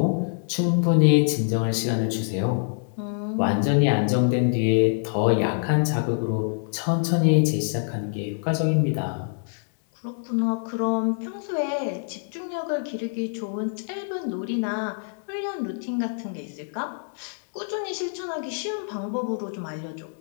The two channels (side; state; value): right; silent; digital silence